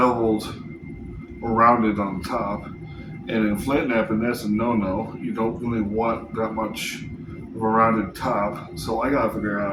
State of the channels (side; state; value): both; identical; correlation 1.00